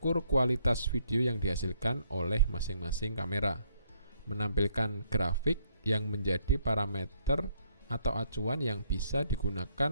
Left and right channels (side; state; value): both; inverted; correlation -0.69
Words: kualitas video yang dihasilkan oleh masing-masing kamera. Menampilkan grafik yang menjadi parameter atau acuan yang bisa